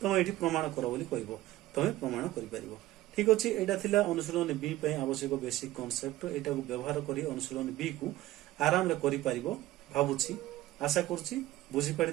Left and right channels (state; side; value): quieter; left; 15.9 dB